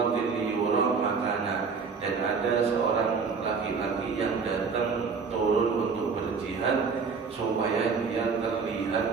liyura makana. Dan ada seorang laki-laki yang datang turun untuk berjihad supaya dia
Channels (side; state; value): left; quieter; 5.2 dB